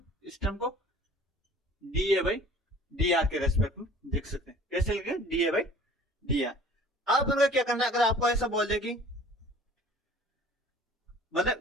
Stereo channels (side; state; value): both; normal; correlation 0.49